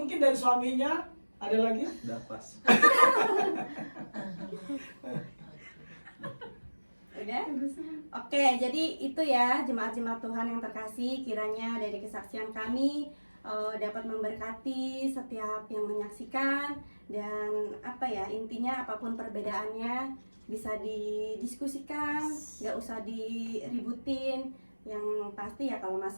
dari suaminya ada lagi? Udah pas. Udah? Oke, jadi itu ya jemaat-jemaat Tuhan yang terkasih, kiranya dari kesaksian kami dapat memberkati setiap yang menyaksikan, dan intinya apapun perbedaannya bisa didiskusikan, nggak usah diributin. Yang pasti ya kalau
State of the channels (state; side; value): inverted; both; correlation -1.00